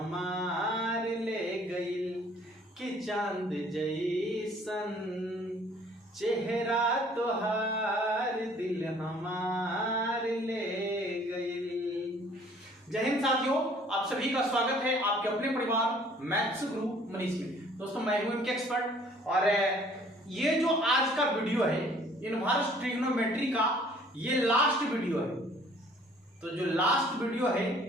ले गइल, कि चांद जैसन चेहरा तोहार दिल हमार ले गइल। जय हिंद साथियों, आप सभी का स्वागत है आपके अपने परिवार मैथ्स गुरु मनीष में। दोस्तों मैं हूं इनके एक्सपर्ट और ये जो आज का वीडियो है इनवर्स ट्रिग्नोमेट्री का ये लास्ट वीडियो है। तो जो लास्ट वीडियो है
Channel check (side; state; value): both; normal; correlation 0.56